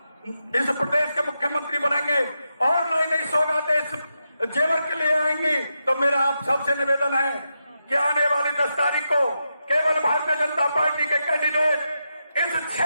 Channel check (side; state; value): both; inverted; correlation -0.86